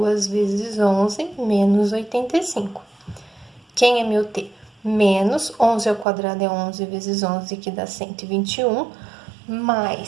vezes 11, menos 85. Quem é meu t? Menos 11 ao quadrado é 11 vezes 11, que dá 121,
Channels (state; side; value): drops out; left; at 6.1 s